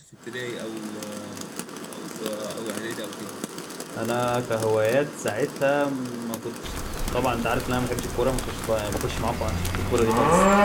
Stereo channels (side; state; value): both; identical; correlation 1.00